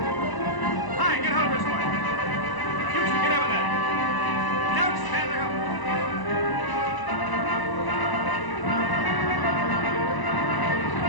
Hi, get hold of this one. You two get over there. Don't stand there.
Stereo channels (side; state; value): right; late; 1.0 ms